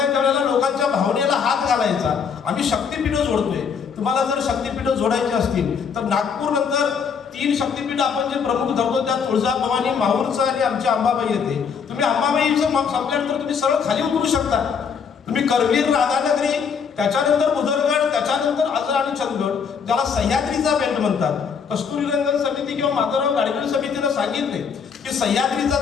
त्यावेळेला लोकांच्या भावनेला हात घालायचा. आम्ही शक्तीपीठ जोडतोय. तुम्हाला जर शक्तीपीठ जोडायची असतील तर नागपूर नंतर 3 शक्तीपीठ आपण जे प्रमुख धरतो त्यात तुळजाभवानी, माहूरचं आणि आमची अंबाबाई येते. तुम्ही अंबाबाईचं संपल्यानंतर तुम्ही सरळ खाली उतरू शकता. तुम्ही करवीर, राधानगरी, त्याच्यानंतर भुदरगड, त्याच्यानंतर आजरा आणि चंदगड ज्याला सह्याद्रीचा बेल्ट म्हणतात. कस्तुरीरंगन समिती किंवा माधवराव गाडगीळ समितीनं सांगितले की सह्याद्रीचा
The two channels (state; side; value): quieter; right; 6.4 dB